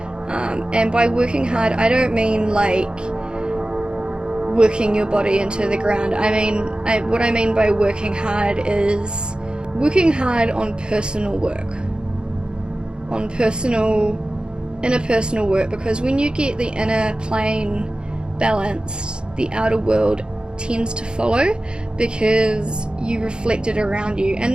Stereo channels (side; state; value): left; late; 0.050 ms